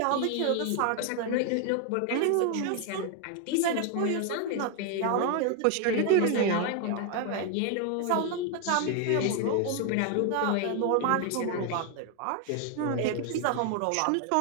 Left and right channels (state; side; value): different; both; correlation 0.01